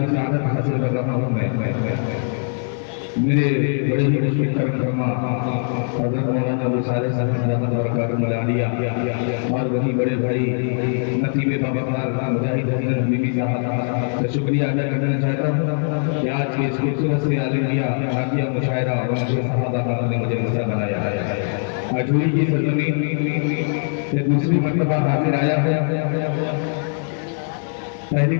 सआदत हासिल कर रहा हूँ मैं। मेरे बड़े मुश्किल करम हज़रत मौलाना अबू सालेह साहब बरकातुहू मलानिया और वही बड़े भाई नसीबे बाबा मुजाहिद हसन बीबी साहब का शुक्रिया अदा करना चाहता हूँ कि आज के इस खूबसूरत से आलिमिया हाकिया मुशायरा और सहाबा का ने मुझे हिस्सा बनाया है। अजूरी की सरजमीन से दूसरी मर्तबा हाजिर आया है। पहली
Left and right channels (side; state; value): right; silent; 57 dB below the other